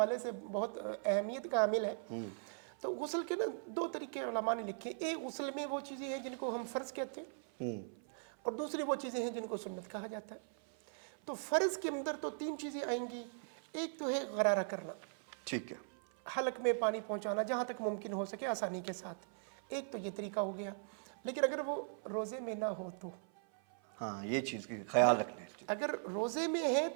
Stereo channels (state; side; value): silent; left; 52 dB below the other